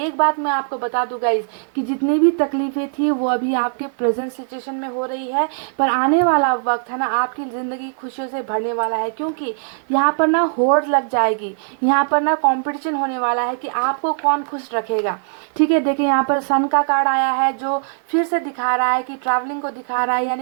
बात मैं आपको बता दूं गाइस, कि जितनी भी तकलीफें थी वो अभी आपके प्रेजेंट सिचुएशन में हो रही है, पर आने वाला वक्त है ना, आपकी ज़िंदगी खुशियों से भरने वाला है। क्योंकि यहाँ पर ना होड़ लग जाएगी, यहाँ पर ना कंपटीशन होने वाला है कि आपको कौन खुश रखेगा। ठीक है, देखिए यहाँ पर सन का कार्ड आया है, जो फिर से दिखा रहा है कि ट्रैवलिंग को दिखा रहा है,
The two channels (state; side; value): silent; left; 55 dB below the other